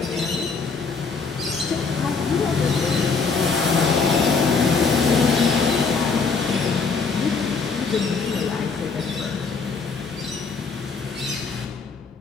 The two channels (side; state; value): right; quieter; 4.9 dB